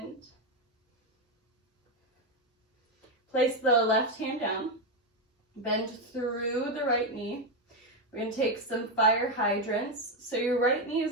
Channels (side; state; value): both; normal; correlation 0.07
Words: Place the left hand down. Bend through the right knee. We're going to take some fire hydrants. So your right knee